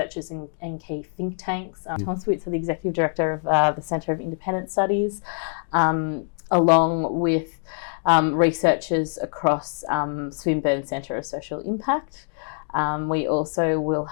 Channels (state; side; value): silent; right; 62 dB below the other